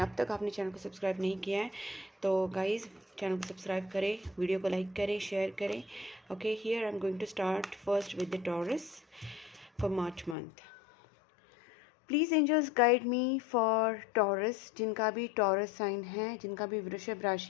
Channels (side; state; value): right; drops out; at 10.4 s